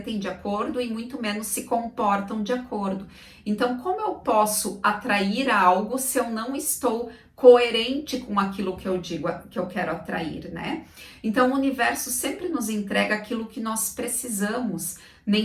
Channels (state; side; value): identical; both; correlation 1.00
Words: de acordo e muito menos se comportam de acordo. Então, como eu posso atrair algo se eu não estou coerente com aquilo que eu digo que eu quero atrair, né? Então, o universo sempre nos entrega aquilo que nós precisamos, nem